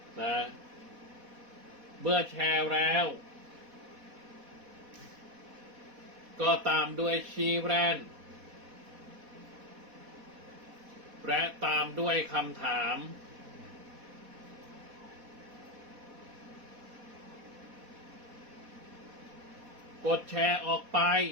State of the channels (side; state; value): left; late; 4.1 ms